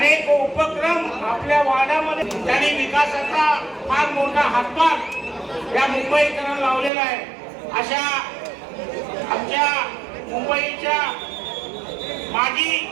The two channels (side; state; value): left; drops out; at 6.9 s